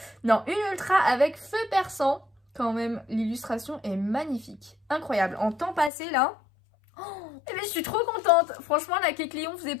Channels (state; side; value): drops out; right; at 5.9 s